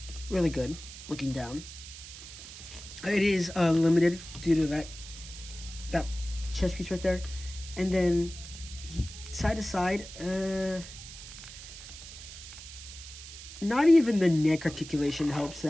really good. Looking down. It is limited due to that chest piece right there. And then side to side, not even the neck articulation helps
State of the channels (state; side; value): noise; right; hiss, 13 dB below the sound